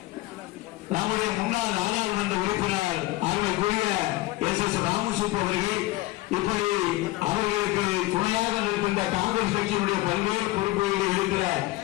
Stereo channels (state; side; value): quieter; right; 19.1 dB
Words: நம்முடைய முன்னாள் நாடாளுமன்ற உறுப்பினர் அருமைக்குரிய எஸ் ராமசுப்பு அவர்கள், இப்படி அவர்களுக்கு துணையாக இருக்கின்ற காங்கிரஸ் கட்சியினுடைய பல்வேறு பொறுப்புகளில் இருக்கிற